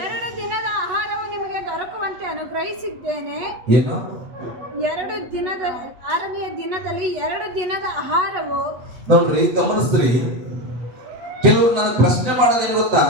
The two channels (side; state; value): left; late; 8.2 ms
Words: ದಿನದ ಆಹಾರವು ನಿಮಗೆ ದೊರಕುವಂತೆ ಅನುಗ್ರಹಿಸಿದ್ದೇನೆ. ಏನು? 6ನೆಯ ದಿನದಲ್ಲಿ 2 ದಿನದ ಆಹಾರವು. ನೋಡ್ರಿ, ಗಮನಿಸ್ರಿ. ಕೆಲವರು ನಾನು ಪ್ರಶ್ನೆ ಮಾಡೋದೇನು ಗೊತ್ತಾ?